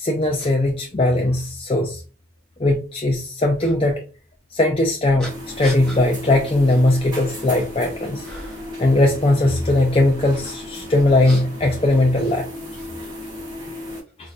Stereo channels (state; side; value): normal; both; correlation 0.70